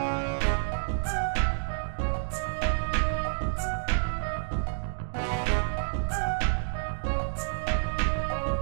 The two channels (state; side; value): silent; left; digital silence